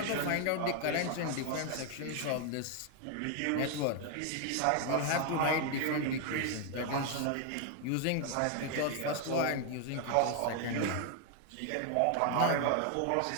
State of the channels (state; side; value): different; both; correlation 0.00